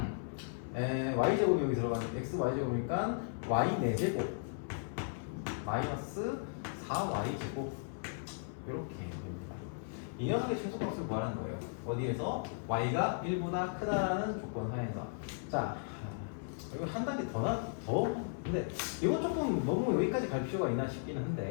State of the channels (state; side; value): silent; right; 54 dB below the other